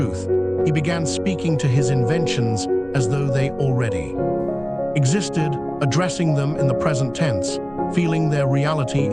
he began speaking to his inventions as though they already existed, addressing them in the present tense, feeling their reality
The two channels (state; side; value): noise; left; hum, 26 dB below the sound